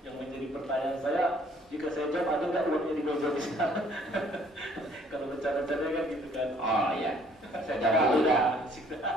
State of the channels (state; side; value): normal; both; correlation 0.60